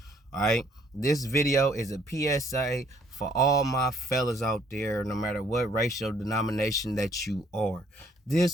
All right, this video is a PSA for all my fellas out there, no matter what racial denomination that you are.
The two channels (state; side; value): normal; both; correlation 0.64